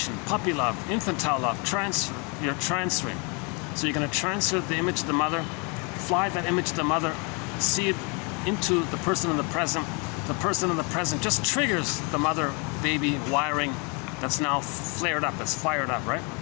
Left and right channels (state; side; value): quieter; right; 32.7 dB